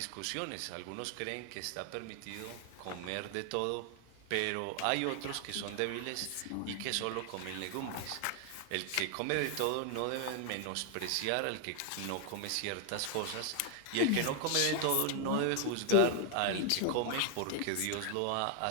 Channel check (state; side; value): different; both; correlation 0.00